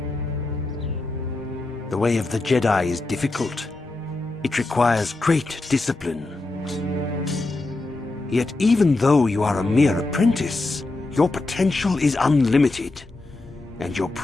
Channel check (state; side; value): quieter; right; 3.1 dB